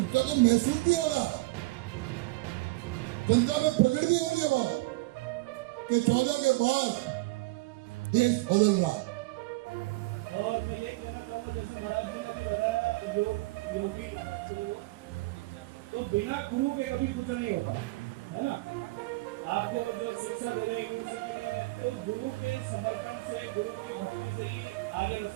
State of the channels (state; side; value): quieter; left; 21.7 dB